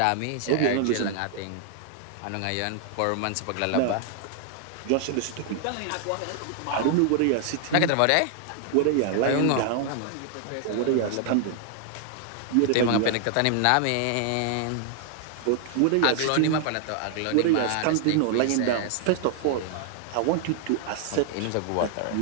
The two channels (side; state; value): both; different; correlation 0.00